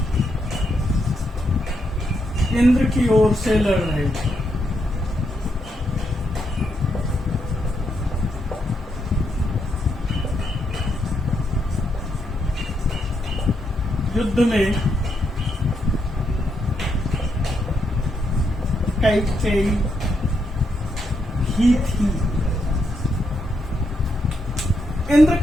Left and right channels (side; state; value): both; normal; correlation 0.80